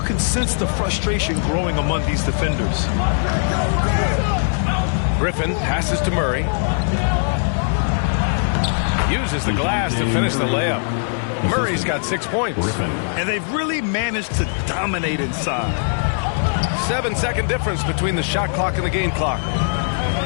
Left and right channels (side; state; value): right; silent; digital silence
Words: sense the frustration growing among these defenders. Griffin passes to Murray. Uses the glass to finish the layup. Murray's got 6 points. And they've really managed to dominate inside. 7-second difference between the shot clock and the game clock.